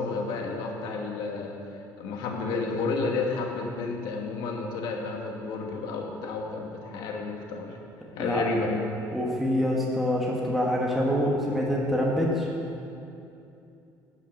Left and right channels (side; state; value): both; normal; correlation 0.59